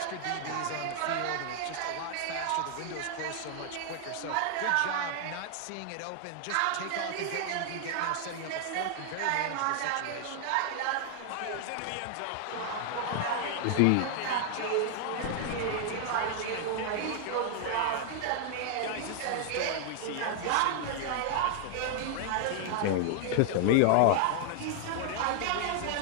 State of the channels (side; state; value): both; different; correlation 0.00